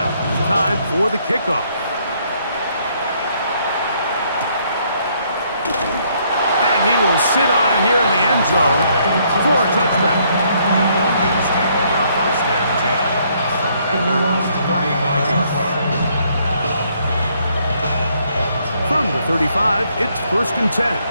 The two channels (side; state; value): both; inverted; correlation -0.69